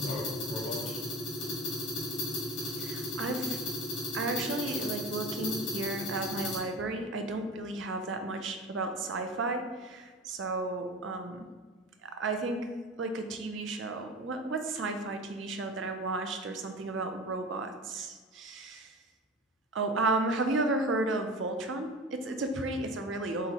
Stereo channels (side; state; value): both; normal; correlation 0.33